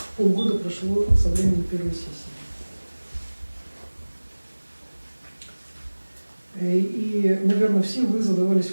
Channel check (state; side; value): inverted; both; correlation -1.00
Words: Полгода прошло со времени первой сессии. И, наверное, все вы